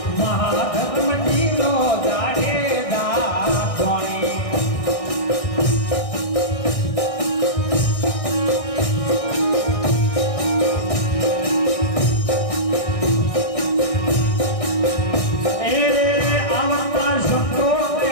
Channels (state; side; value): late; right; 1.6 ms